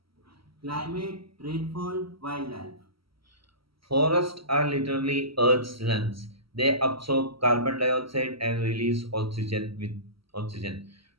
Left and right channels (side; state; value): left; late; 0.75 ms